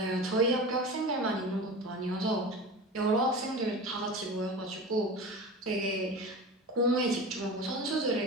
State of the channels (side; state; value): both; normal; correlation 0.31